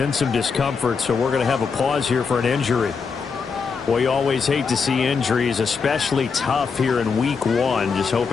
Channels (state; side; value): quieter; right; 5.4 dB